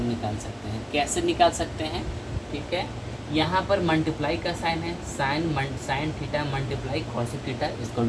निकाल सकते हैं। कैसे निकाल सकते हैं? ठीक है, यहाँ पर मल्टीप्लाई का साइन है, sine theta multiply cosec theta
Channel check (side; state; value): both; identical; correlation 1.00